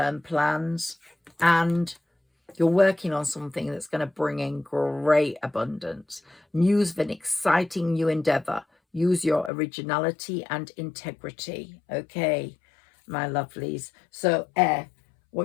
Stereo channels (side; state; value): right; drops out; at 9.5 s